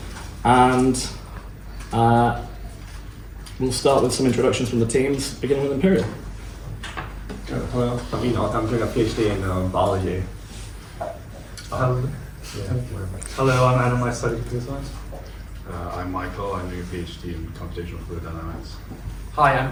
And we'll start with some introductions from the teams, beginning with Imperial. Hello, I'm Enoch. I'm doing a PhD in biology. Hello, I'm Adam. I study computer science. I'm Michael. I'm doing a PhD in computational fluid dynamics. Hi, I'm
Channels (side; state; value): both; identical; correlation 1.00